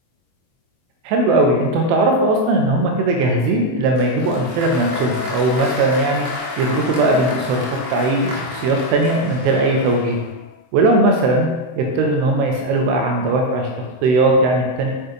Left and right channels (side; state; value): left; late; 24 ms